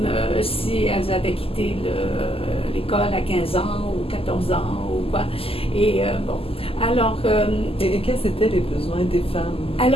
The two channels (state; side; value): late; right; 0.27 ms